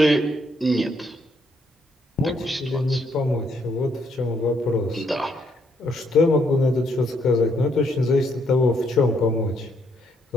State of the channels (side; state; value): both; normal; correlation 0.73